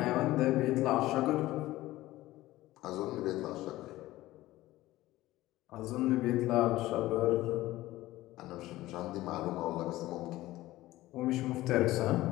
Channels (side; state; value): right; quieter; 16.8 dB